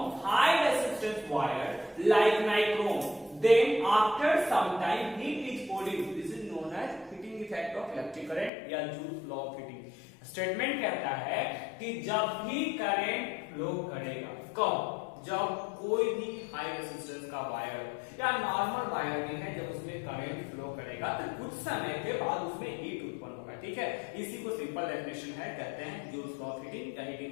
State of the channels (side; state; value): right; drops out; at 8.5 s